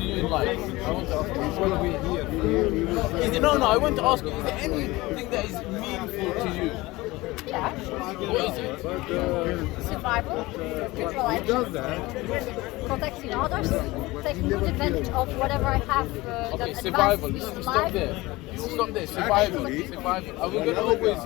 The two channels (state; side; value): quieter; right; 20.6 dB